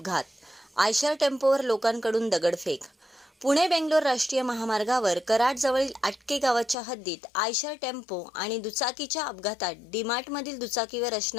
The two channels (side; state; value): right; drops out; at 6.8 s